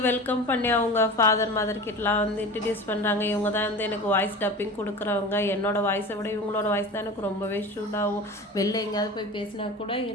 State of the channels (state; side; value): normal; both; correlation 0.33